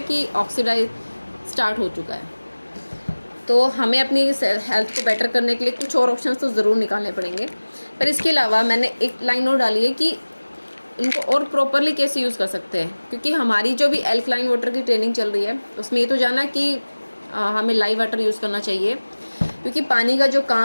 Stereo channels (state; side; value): inverted; both; correlation -1.00